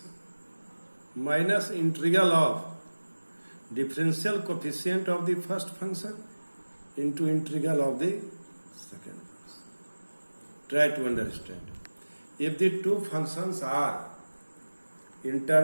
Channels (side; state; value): both; inverted; correlation -1.00